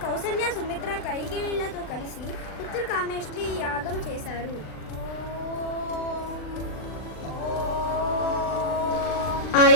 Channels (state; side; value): late; right; 39 ms